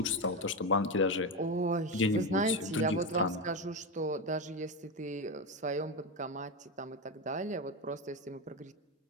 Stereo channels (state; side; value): normal; both; correlation 0.13